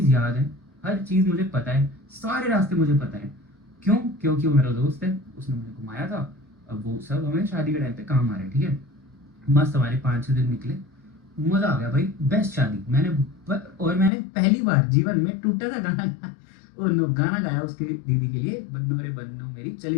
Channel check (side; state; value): right; drops out; at 14.1 s